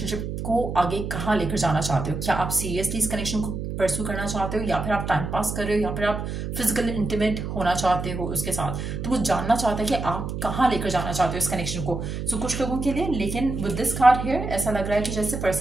को आगे कहाँ लेकर जाना चाहते हो। क्या आप सीरियसली इस कनेक्शन को परस्यू करना चाहते हो या फिर आप टाइम पास कर रहे हो या फिर आप फिजिकल इंटीमेट होना चाहते हो उसके साथ। तो वो जानना चाहता है कि आप कहाँ लेकर जाना चाहते हो इस कनेक्शन को। सो कुछ लोगों के लिए, लेकिन विद दिस कार्ड हियर ऐसा लग रहा है कि जैसे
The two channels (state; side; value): noise; right; hum, 5 dB below the sound